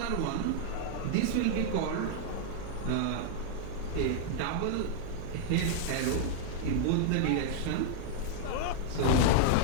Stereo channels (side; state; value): both; different; correlation -0.01